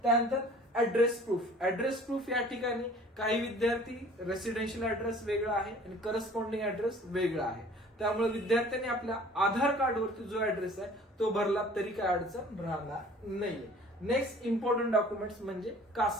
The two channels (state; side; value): normal; both; correlation 0.50